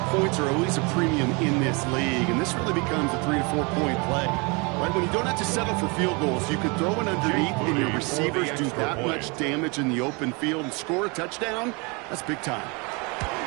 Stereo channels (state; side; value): quieter; left; 29.9 dB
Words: points are always a premium in this league, and this really becomes a 3 to 4 point play. Right, when you don't have to settle for field goals, you could throw it underneath and your receivers do that much damage in the open field and score a touchdown. That's big time.